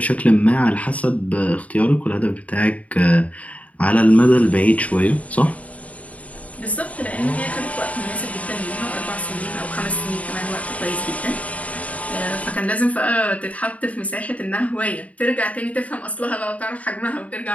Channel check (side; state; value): right; late; 0.068 ms